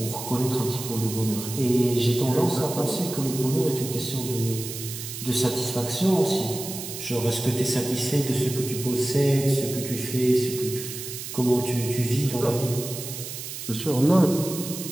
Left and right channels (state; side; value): noise; right; hiss, 8 dB below the sound